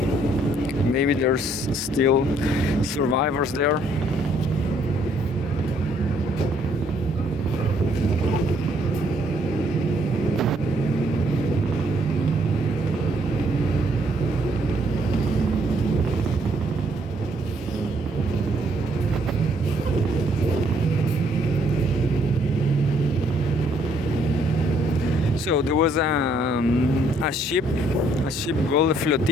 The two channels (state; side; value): normal; both; correlation 0.67